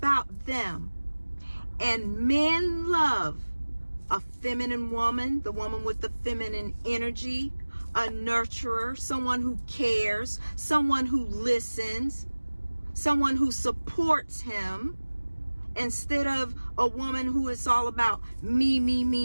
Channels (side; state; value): both; inverted; correlation -1.00